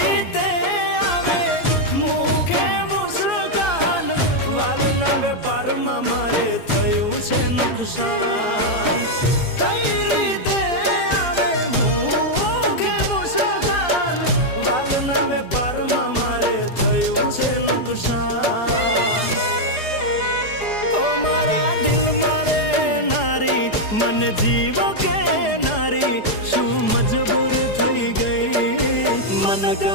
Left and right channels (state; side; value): late; right; 4.9 ms